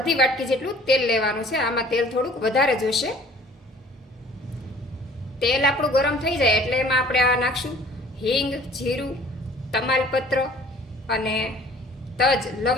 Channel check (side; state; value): both; normal; correlation 0.51